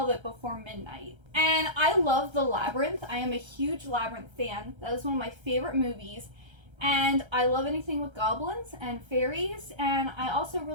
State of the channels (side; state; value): left; late; 1.3 ms